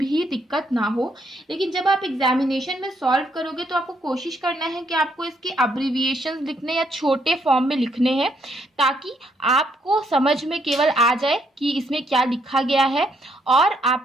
दिक्कत ना हो। लेकिन जब आप एग्जामिनेशन में सॉल्व करोगे तो आपको कोशिश करना है कि आपको इसके अब्रिविएशंस लिखने या छोटे फॉर्म में लिखने हैं, ताकि आपको समझ में केवल आ जाए कि इसमें क्या लिखा गया है और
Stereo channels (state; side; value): normal; both; correlation 0.73